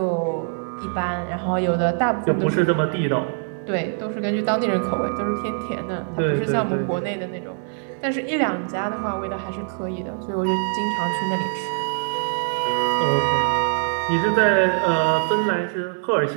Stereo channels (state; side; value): silent; left; 63 dB below the other